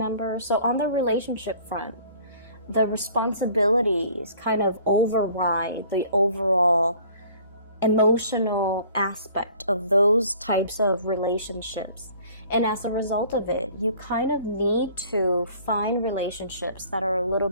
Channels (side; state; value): both; inverted; correlation -0.52